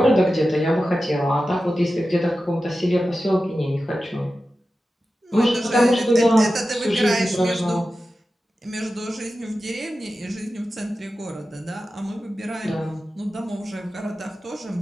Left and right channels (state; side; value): normal; both; correlation 0.93